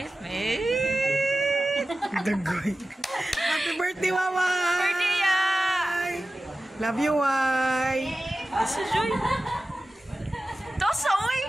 Dagoy. Happy birthday, Waway! Birthday ya! Love you, Wai! Sa joy. Tosa, oy!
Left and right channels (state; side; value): normal; both; correlation 0.95